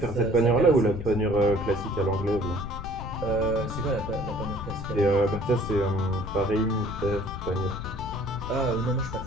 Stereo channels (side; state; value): left; noise; rumble, 8 dB below the sound